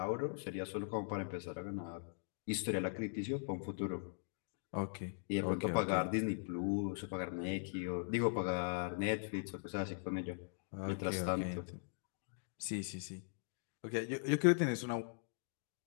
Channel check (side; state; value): right; silent; digital silence